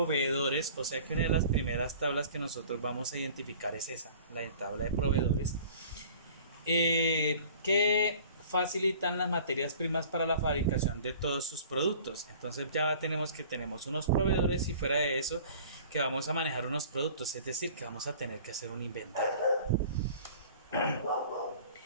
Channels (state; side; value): inverted; both; correlation -0.47